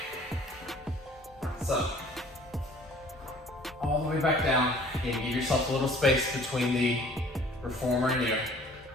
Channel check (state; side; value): normal; both; correlation 0.52